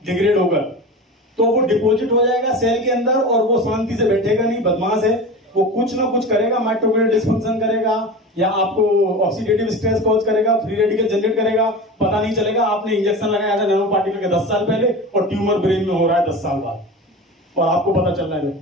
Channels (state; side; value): normal; both; correlation 0.30